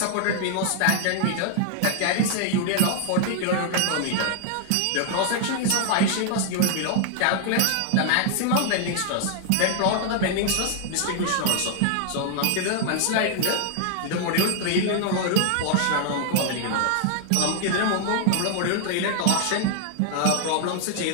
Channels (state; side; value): different; both; correlation 0.00